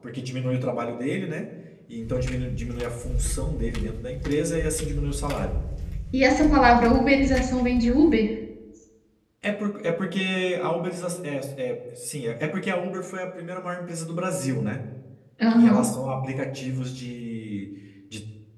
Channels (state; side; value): identical; both; correlation 1.00